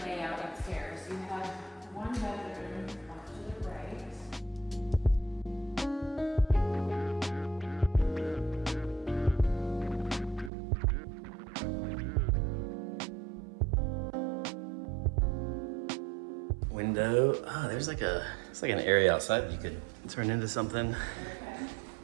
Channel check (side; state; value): left; drops out; at 10.5 s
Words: layout upstairs. You have one bedroom off to the right. window. Oh, there's it's like an area outside you could turn into something.